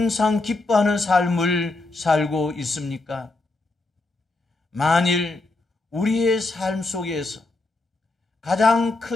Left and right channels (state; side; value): quieter; right; 3.1 dB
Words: 기뻐하는 삶을 살고 있습니까? 만일 우리의 삶 속에서 가장